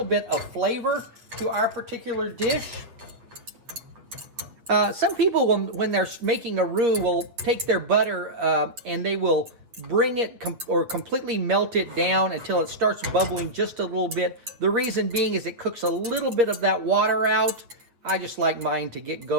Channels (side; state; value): left; late; 8.5 ms